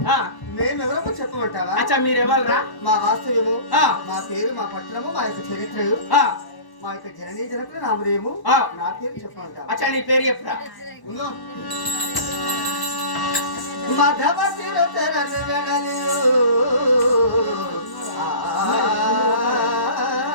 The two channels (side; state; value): right; late; 1.1 ms